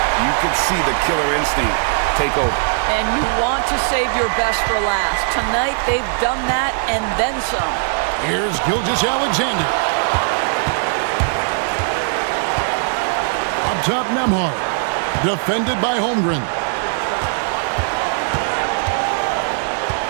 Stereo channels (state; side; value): silent; left; 58 dB below the other